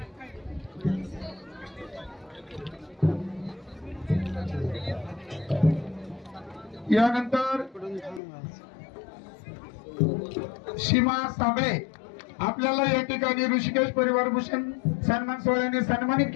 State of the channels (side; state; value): right; drops out; at 8.2 s